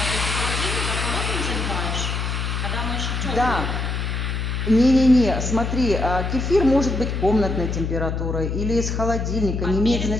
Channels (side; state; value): left; noise; hum, 2 dB below the sound